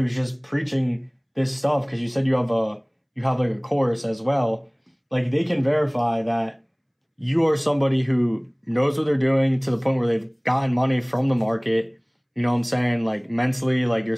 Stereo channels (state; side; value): identical; both; correlation 1.00